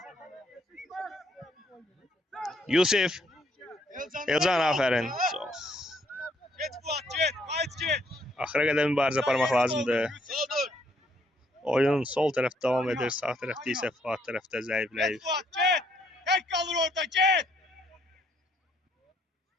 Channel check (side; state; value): both; normal; correlation 0.69